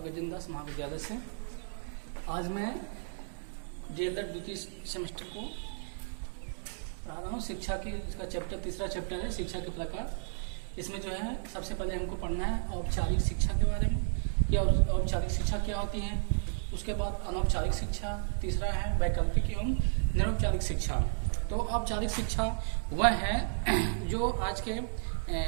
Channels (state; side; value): silent; left; digital silence